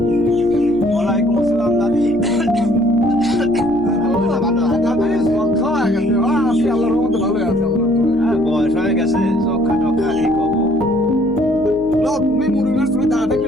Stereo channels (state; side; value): noise; left; hum, 18 dB below the sound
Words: ওয়ালাইকুম আসসালাম দাদি। বয়স হয়ে গেছে, চক্ষা টক্ষা কি করবো? তুমি মুরুগার তুমি দাঁড়া